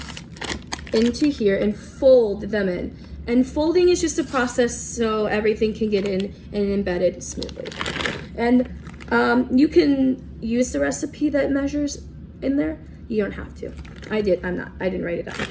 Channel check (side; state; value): both; identical; correlation 1.00